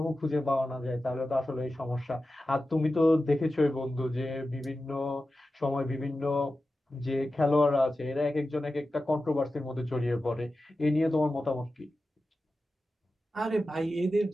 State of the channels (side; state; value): both; normal; correlation 0.93